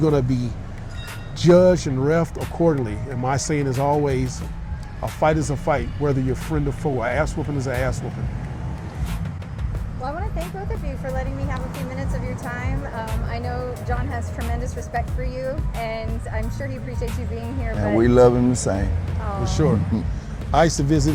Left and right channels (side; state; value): both; identical; correlation 1.00